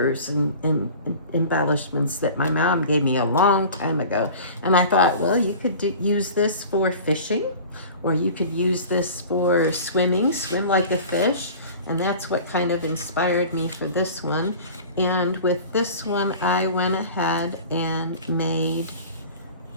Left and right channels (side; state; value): both; inverted; correlation -0.40